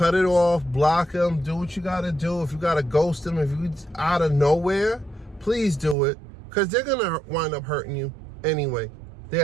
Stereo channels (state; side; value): drops out; left; at 6.0 s